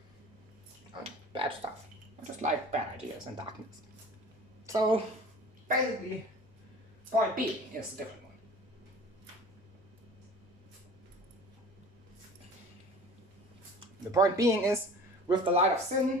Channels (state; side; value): normal; both; correlation 0.42